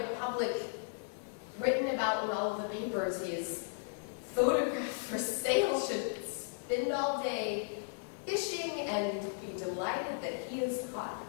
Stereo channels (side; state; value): right; silent; digital silence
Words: public, written about in all of the papers, his photographed for sale, should spend all day fishing and be delighted that he has